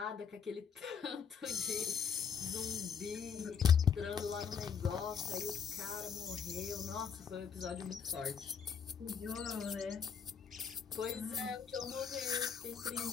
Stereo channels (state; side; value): quieter; right; 6.9 dB